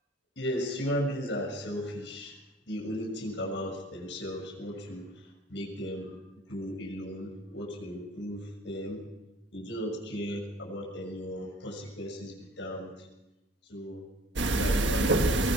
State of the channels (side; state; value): both; normal; correlation 0.51